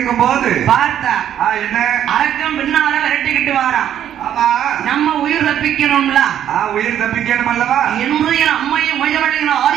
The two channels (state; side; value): quieter; left; 10.4 dB